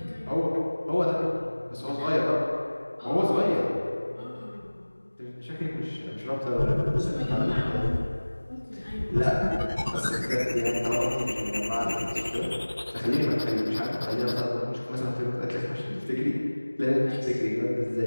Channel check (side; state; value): both; inverted; correlation -1.00